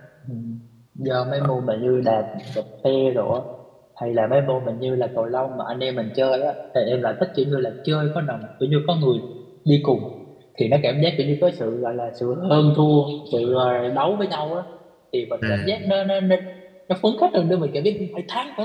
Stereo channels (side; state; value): both; identical; correlation 1.00